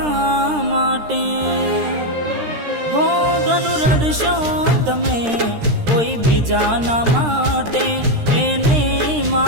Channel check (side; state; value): left; late; 13 ms